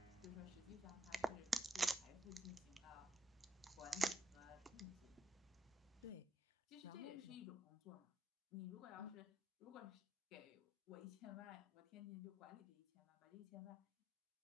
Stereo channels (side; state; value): both; normal; correlation 0.76